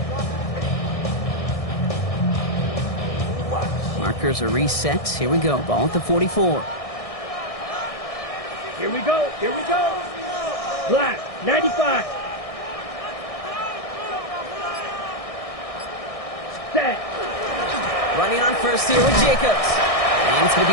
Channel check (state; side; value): late; right; 1.6 ms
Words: Markers are reset. Here we go. Ball at the 44. Here we go. Black, 95. Set. Running on first here with Jacobs. And it's going to